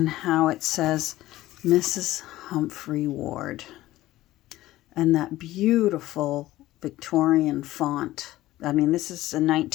how it says Mrs. Humphrey Ward, and that beautiful Victorian font. I mean, this is a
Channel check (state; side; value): quieter; right; 16.1 dB